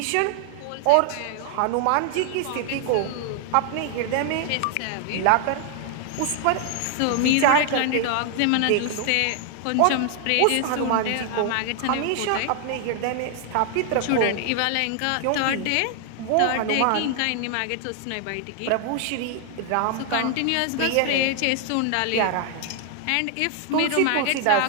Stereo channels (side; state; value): both; different; correlation 0.00